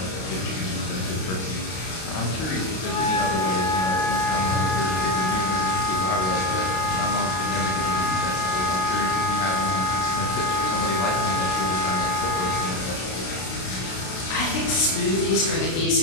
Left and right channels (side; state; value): right; late; 32 ms